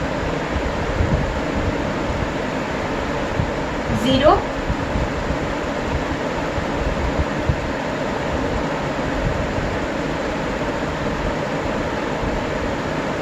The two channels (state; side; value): identical; both; correlation 1.00